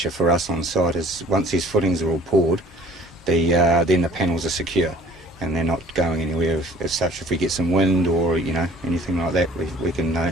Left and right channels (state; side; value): normal; both; correlation 0.50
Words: for us on site, is once these footings are all poured, then the panels are secure, and they're not going anywhere as such. If we get some wind or anything like that, we can.